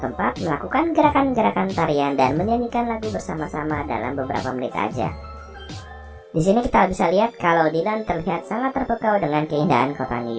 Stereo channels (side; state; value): both; identical; correlation 1.00